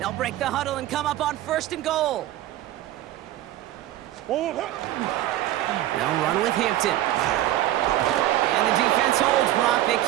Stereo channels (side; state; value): left; quieter; 14.0 dB